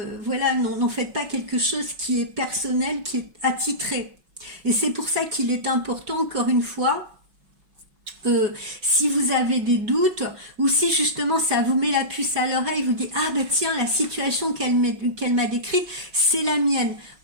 voilà, n'en faites pas quelque chose qui est personnel, qui est attitré. Et c'est pour ça qu'il est important, encore une fois, si vous avez des doutes ou si justement ça vous met la puce à l'oreille, vous dites ah ben tiens, la situation qu'elle m'a décrite, c'est la mienne.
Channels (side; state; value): left; late; 5.4 ms